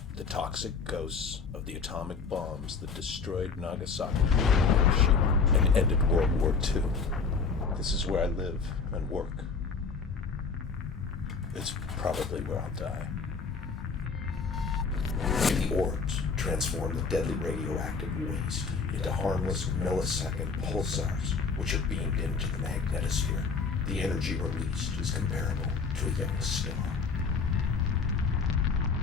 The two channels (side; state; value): right; quieter; 5.0 dB